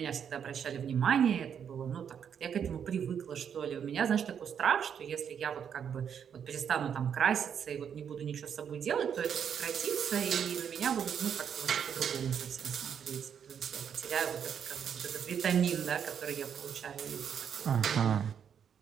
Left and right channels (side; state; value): left; quieter; 7.9 dB